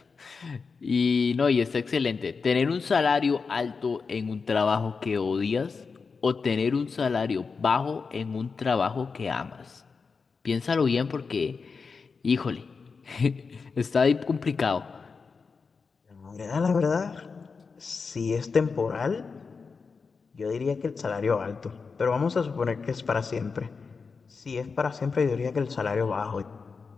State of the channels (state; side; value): quieter; right; 5.0 dB